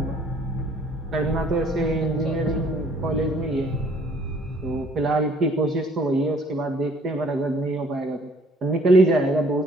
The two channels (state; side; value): normal; both; correlation 0.59